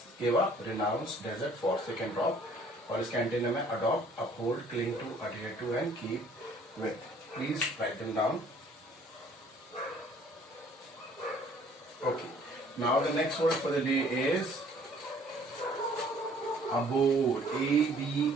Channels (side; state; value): both; normal; correlation 0.57